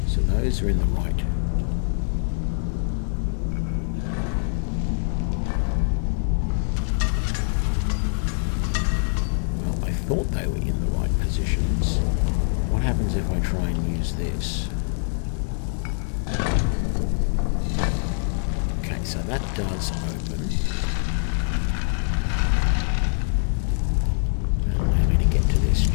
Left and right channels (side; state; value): right; silent; digital silence